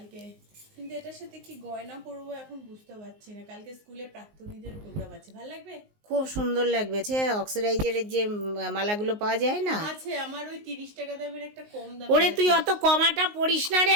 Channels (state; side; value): late; left; 19 ms